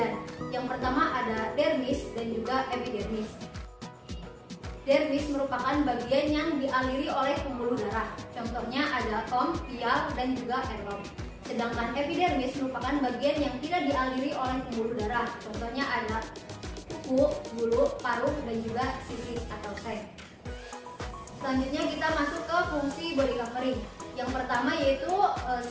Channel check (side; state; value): both; identical; correlation 1.00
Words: Yang pertama ada dermis dan juga epidermis. Dermis merupakan bagian yang dialiri oleh pembuluh darah. Contohnya ada tom, pial, dan juga elom. Sedangkan epidermis merupakan bagian yang tidak dialiri oleh pembuluh darah. Contohnya ada kuku, bulu, paruh, dan juga sisis atau seng. Selanjutnya kita masuk ke fungsi body covering. Yang pertama yaitu